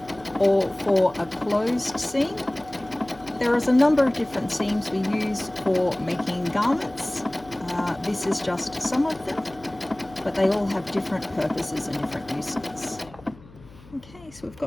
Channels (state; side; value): noise; left; hum, 22 dB below the sound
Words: or for a closed seam. There is a number of different seams we use for making garments. This is just some of them, but they all have different purposes and different uses. Okay, so we've